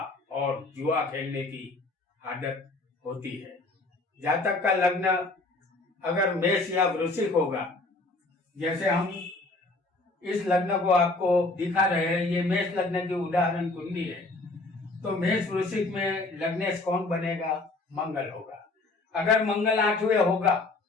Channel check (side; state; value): right; quieter; 3.2 dB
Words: और जुआ खेलने की आदत होती है। जातक का लग्न अगर मेष या वृश्चिक होगा, जैसे हम इस लग्न को आपको दिखा रहे हैं, ये मेष लग्न की उदाहरण कुंडली है, तो मेष वृश्चिक में लग्नेश कौन बनेगा? मंगल होगा। अगर मंगल 8वें होगा